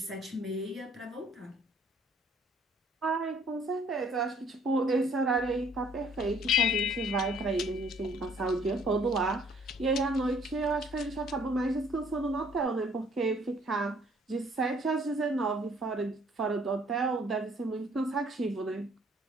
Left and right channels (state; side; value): normal; both; correlation 0.60